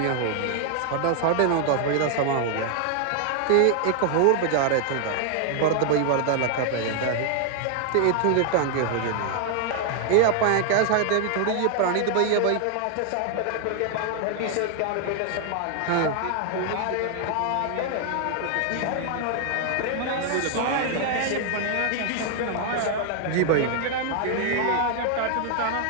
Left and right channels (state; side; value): different; both; correlation 0.00